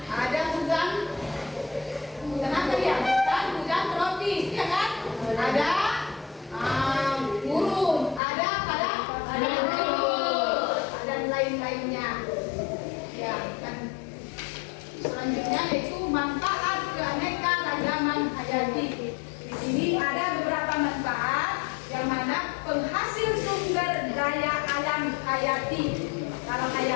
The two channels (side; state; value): right; drops out; at 8.2 s